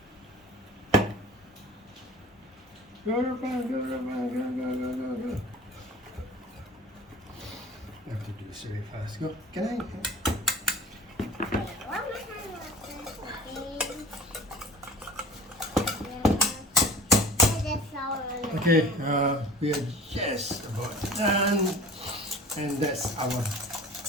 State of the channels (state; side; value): normal; both; correlation 0.43